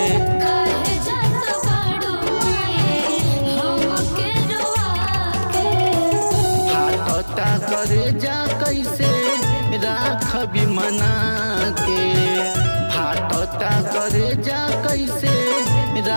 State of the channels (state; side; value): inverted; both; correlation -1.00